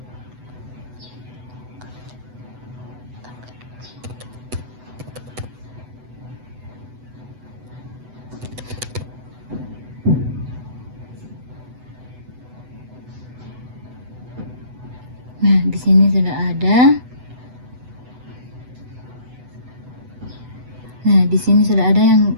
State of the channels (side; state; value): left; late; 8.0 ms